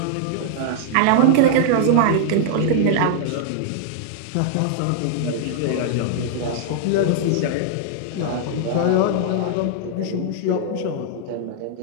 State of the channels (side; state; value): both; different; correlation -0.01